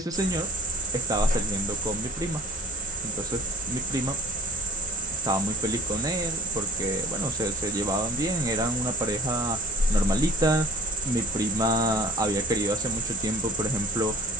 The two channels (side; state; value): both; normal; correlation 0.44